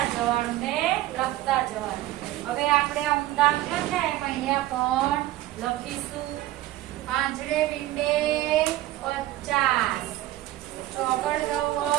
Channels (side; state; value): left; quieter; 15.4 dB